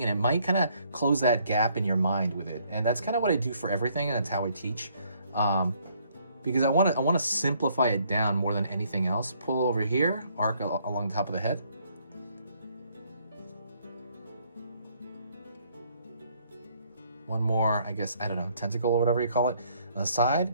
and it might kind of close that gap in your mind with it. And that's kind of what I do for everything, and that's how I teach. Because I want to simplify it down more than anything else. Pull over here, arc along the top of the head. One more, I guess, I don't know, tentacle or whatever you call it, on the side.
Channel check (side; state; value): both; inverted; correlation -0.66